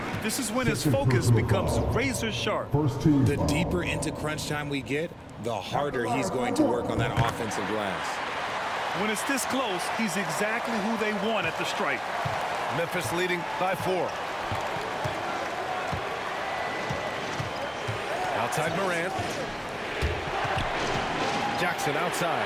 This is when his focus becomes razor sharp. First team The foul. deeper into crunch time we get, the harder he's going to work on that offensive glass. When it's this close, he's exactly who they want at the stripe. Memphis leading by 4. Outside Morant. Jackson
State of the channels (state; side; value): identical; both; correlation 1.00